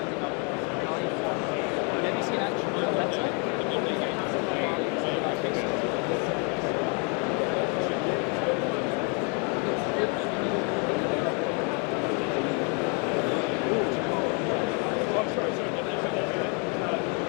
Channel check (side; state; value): right; quieter; 36.1 dB